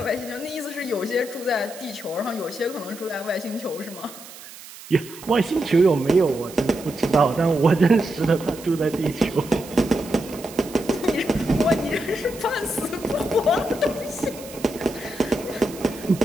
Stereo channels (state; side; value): noise; right; hiss, 16 dB below the sound